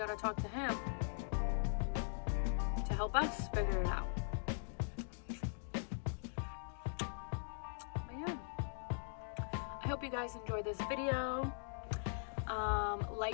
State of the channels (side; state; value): right; silent; digital silence